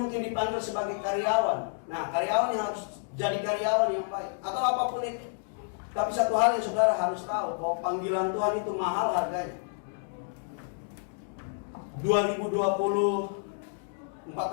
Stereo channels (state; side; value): silent; right; digital silence